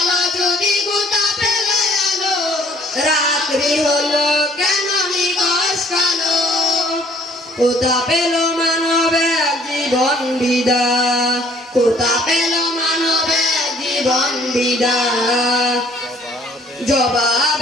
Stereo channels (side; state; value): both; normal; correlation 0.59